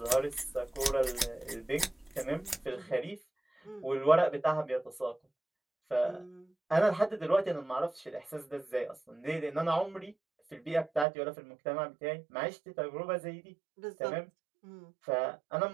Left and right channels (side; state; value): left; drops out; at 11.1 s